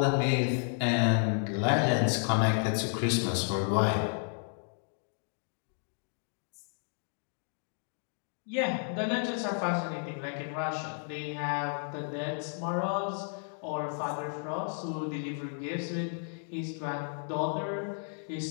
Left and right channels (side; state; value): right; silent; 56 dB below the other